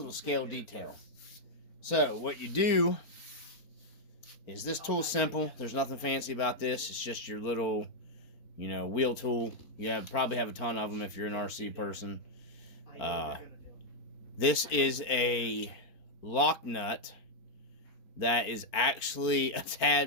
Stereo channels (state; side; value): late; right; 4.4 ms